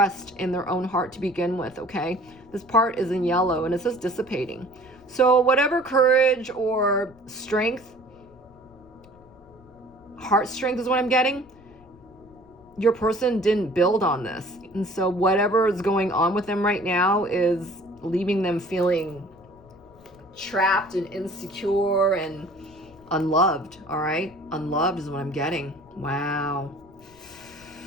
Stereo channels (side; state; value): left; noise; rumble, 25 dB below the sound